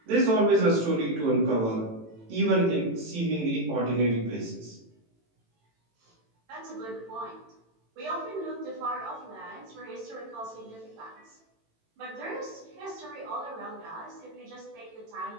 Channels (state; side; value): late; left; 18 ms